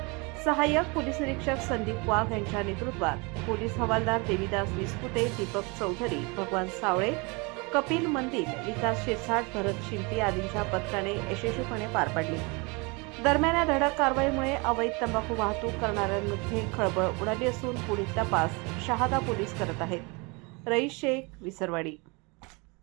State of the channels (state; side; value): quieter; left; 28.8 dB